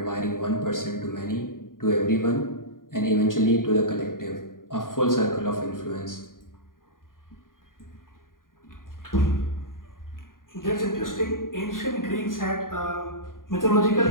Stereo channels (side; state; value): right; late; 0.90 ms